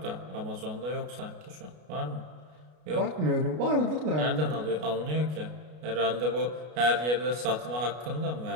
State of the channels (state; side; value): late; left; 33 ms